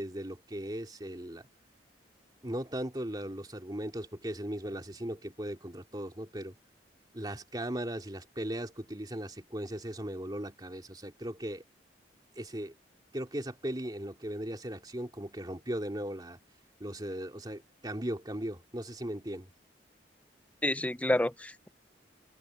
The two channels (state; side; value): normal; both; correlation 0.78